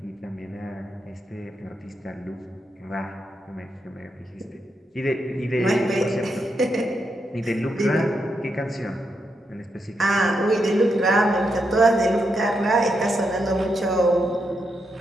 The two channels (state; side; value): normal; both; correlation 0.82